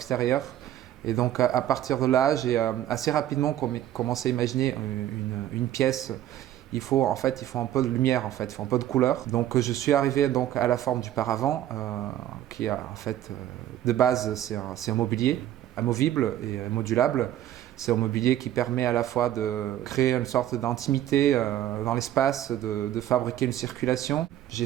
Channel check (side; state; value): left; quieter; 12.2 dB